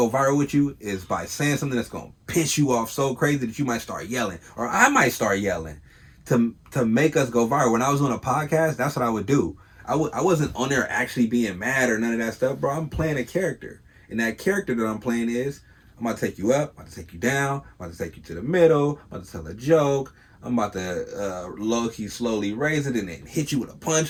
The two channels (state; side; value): identical; both; correlation 1.00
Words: viral with you is by saying something that's gonna piss you off so crazy that you might start yelling, or I might start yelling, to make us go viral. When I was on a podcast, that's what I would do. I wasn't on there actually being mad or none of that stuff, bro. I'm playing a character, and that character that I'm playing is I'm about to take you up, I'm about to take you down, I'm about to take you to the middle, I'm about to tell a joke, I'm about to low key slowly raise it and then hit you with a